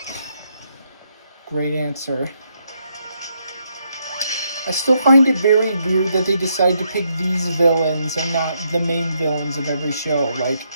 Great answer. I still find it very weird that they decided to pick these villains and not the main villains of every show. Like,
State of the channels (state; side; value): inverted; both; correlation -0.77